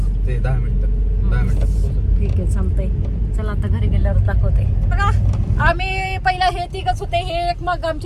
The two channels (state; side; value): identical; both; correlation 1.00